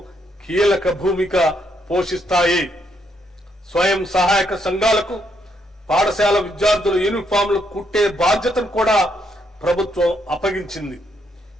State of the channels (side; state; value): both; normal; correlation 0.75